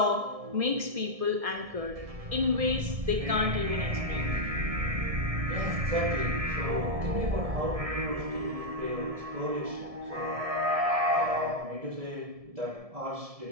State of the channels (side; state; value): left; late; 1.7 ms